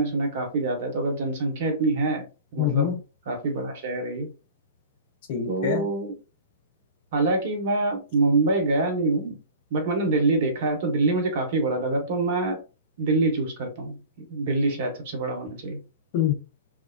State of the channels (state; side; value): inverted; both; correlation -0.39